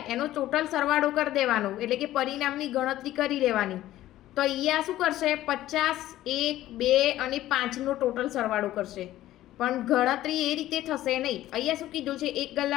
એનો ટોટલ સરવાળો કરી દેવાનો, એટલે કે પરિણામની ગણતરી કરી લેવાની. તો અહીંયા શું કરશે? 50, 1, 2 અને 5નો ટોટલ સરવાળો કરશે, પણ ગણતરી એ રીતે થશે નહીં. અહીંયા શું કીધું છે? એક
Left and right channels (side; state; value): right; quieter; 14.4 dB